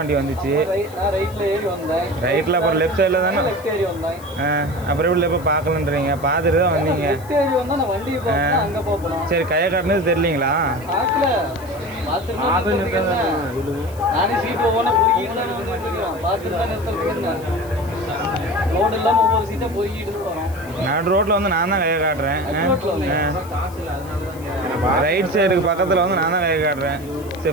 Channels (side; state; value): left; noise; hiss, 22 dB below the sound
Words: வந்துச்சு. ரைட்டில் அப்புறம் லெஃப்ட் சைடில் தானே. அப்புறம் எப்படி இப்போ பார்க்கலன்றீங்க? பார்த்துட்டு தான் வந்தீங்க. சரி கையை காட்டினது தெரியலீங்களா? நடு ரோட்டில் வந்து நான் தான் கையை காட்டுறேன். ரைட் சைடுக்கு பக்கத்தில் வந்து நான் தான் கையை காட்டுறேன்.